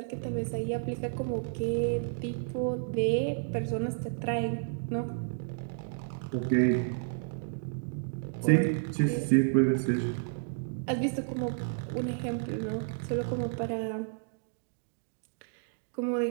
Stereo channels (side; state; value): left; silent; digital silence